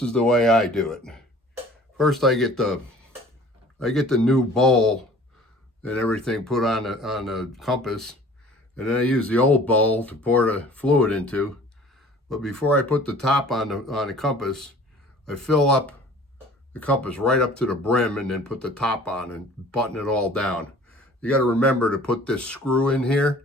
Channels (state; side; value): normal; both; correlation 0.49